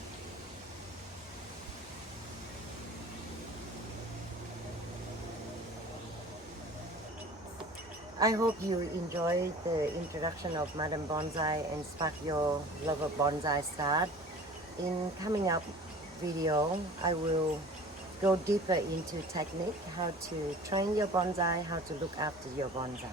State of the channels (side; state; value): both; normal; correlation 0.43